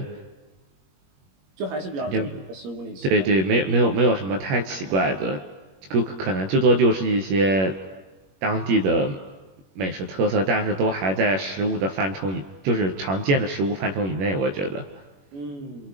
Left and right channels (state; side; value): late; left; 21 ms